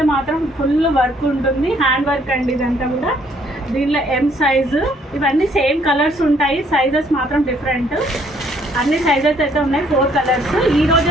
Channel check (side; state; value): both; normal; correlation 0.65